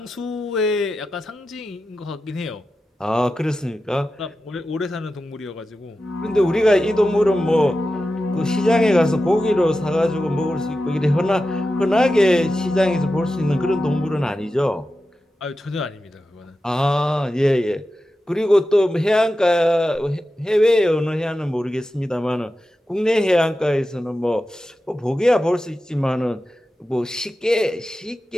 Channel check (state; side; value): normal; both; correlation 0.92